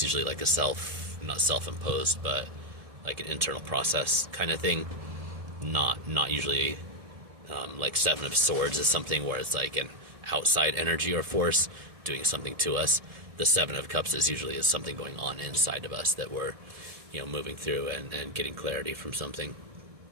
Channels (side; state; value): left; late; 1.8 ms